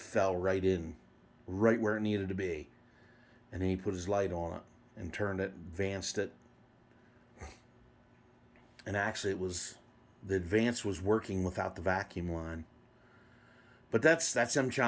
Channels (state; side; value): identical; both; correlation 1.00